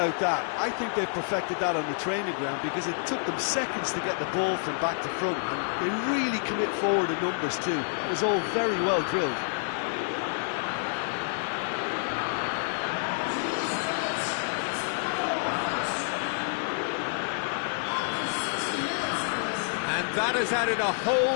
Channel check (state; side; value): silent; right; digital silence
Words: that, I think they've perfected that on the training ground, because it took them seconds to get the ball from back to front, and they really commit forward in numbers too. That was all very well drilled. And that has added a